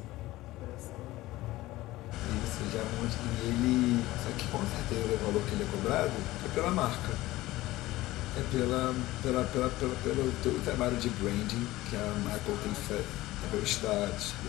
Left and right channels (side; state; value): right; quieter; 17.6 dB